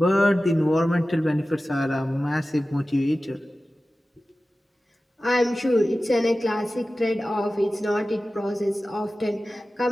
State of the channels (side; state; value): both; normal; correlation 0.95